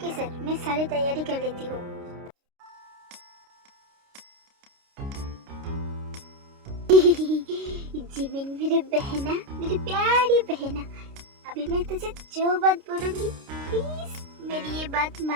सर, मैं सारी तैयारी कर लेती हूँ। जिमिन मेरी बहना, मेरी प्यारी बहना, अभी मैं तुझे जो बात बोलूंगी प्लीज मेरी ये बात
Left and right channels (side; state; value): left; late; 29 ms